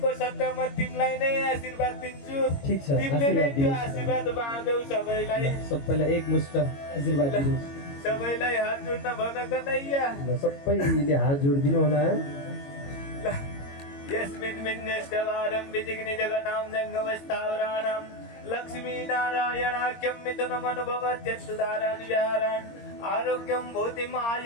सट्टामा तिमीलाई नै आशीर्वाद दिन्छु ठिक छ, तिमीले नै आशीर्वाद त्यो दिनुहोस्। आशीर्वाद बाँड्यौ सबैलाई सबैलाई एकमुष्ट आशीर्वाद दिनुहोस् सबैलाई हात जोड्न भन कन्हैया ल सबैले हात जोडिदिनु होला ल यस्मिन् विन्यस्तवारं विजिग्नि जगतां जङ्गमस्थावराणां लक्ष्मीनारायणाख्यं मिथुनमनुभवत्यस्तुधारान् विहारान् आरोग्यं भूतिम्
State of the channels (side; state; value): right; late; 22 ms